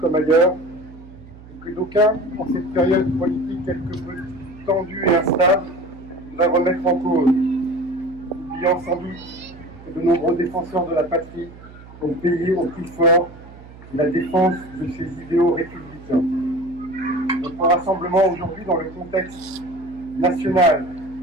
ailleurs, et que d'aucuns, en cette période politique quelque peu tendue et instable, va remettre en cause, oubliant sans doute que de nombreux défenseurs de la patrie ont payé au prix fort la défense de ces idéaux républicains. Notre rassemblement aujourd'hui dans le contexte national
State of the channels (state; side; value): noise; right; hum, 19 dB below the sound